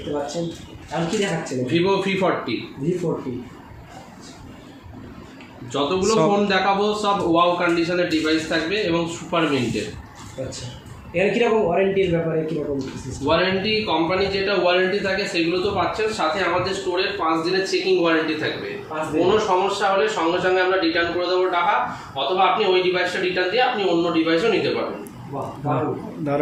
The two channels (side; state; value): both; identical; correlation 1.00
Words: পাচ্ছেন। আর কি দেখাচ্ছেন? Vivo V40। যতগুলো ফোন দেখাবো সব ওয়াও কন্ডিশনের ডিভাইস থাকবে এবং সুপার মিন্টের। আচ্ছা, এর কীরকম ওয়ারেন্টির ব্যাপারে কীরকম? ওয়ারেন্টি কোম্পানি যেটা ওয়ারেন্টি থাকে সেগুলো তো পাচ্ছেন, সাথে আমাদের স্টোরের 5 দিনের চেকিং ওয়ারেন্টি থাকবে। কোনো সমস্যা হলে সঙ্গে সঙ্গে আমরা রিটার্ন করে দেবো টাকা, অথবা আপনি ওই ডিভাইসটা রিটার্ন দিয়ে আপনি অন্য ডিভাইসও নিতে পারবেন।